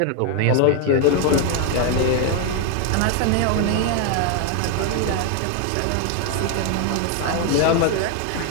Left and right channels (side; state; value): both; different; correlation 0.01